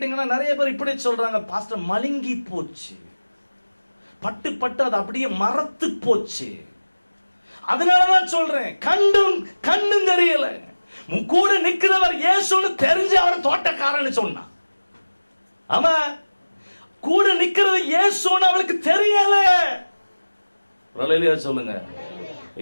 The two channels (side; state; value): both; inverted; correlation -1.00